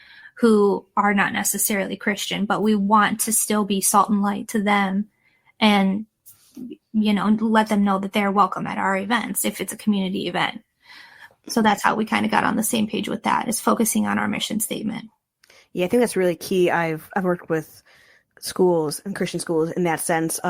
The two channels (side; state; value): both; identical; correlation 1.00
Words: who are not necessarily Christian, but we want to still be salt and light to them and, let them know that they're welcome at our events if it's a community event. So that's how we kind of got on the same page with that, is focusing on our mission statement. Yeah, I think that's really key. I've worked with schools and Christian schools in that sense